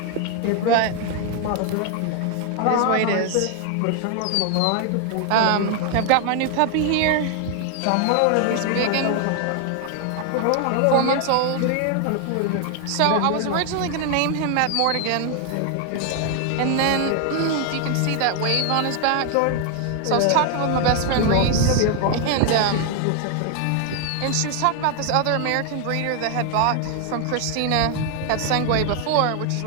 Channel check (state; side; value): different; both; correlation 0.00